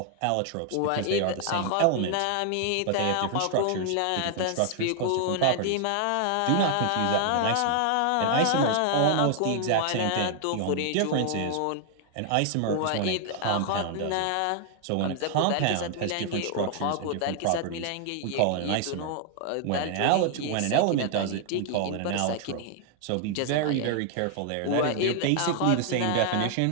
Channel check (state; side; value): different; both; correlation 0.00